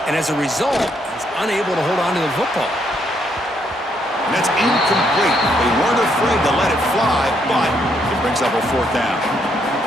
and as a result, he's unable to hold on to the football. And that's incomplete. They weren't afraid to let it fly, but it brings up a fourth down.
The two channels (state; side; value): normal; both; correlation 0.73